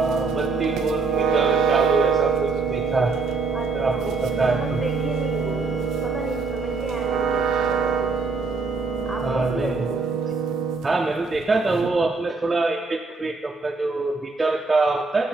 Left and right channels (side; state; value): left; quieter; 4.1 dB